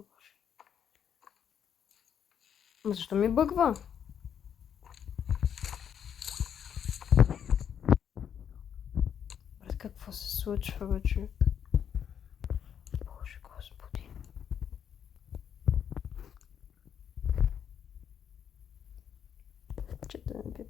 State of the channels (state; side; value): quieter; right; 8.5 dB